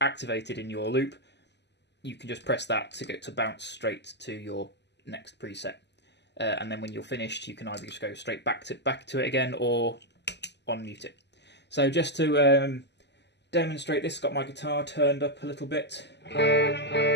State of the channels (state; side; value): late; right; 0.50 ms